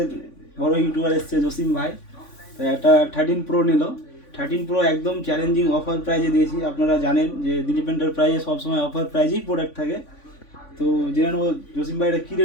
বড় ইউটিউবার এসছে জসিম ভাই। তো একটা 13 প্রো নিল। 13 প্রো একদম চ্যালেঞ্জিং অফার প্রাইজে দিয়েছি। আপনারা জানেন যে দিলীপ এন্টারপ্রাইজে সবসময় অফার প্রাইজেই প্রোডাক্ট থাকে। তো জেনে নেবো জসিম ভাই এটা কী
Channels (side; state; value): right; late; 3.5 ms